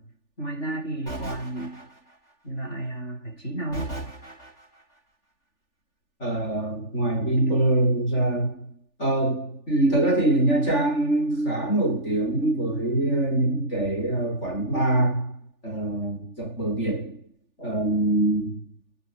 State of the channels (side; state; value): right; late; 3.4 ms